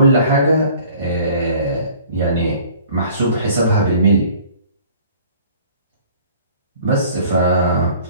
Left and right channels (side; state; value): both; inverted; correlation -0.51